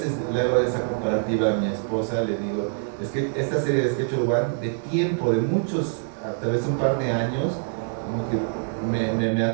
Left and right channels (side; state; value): left; silent; digital silence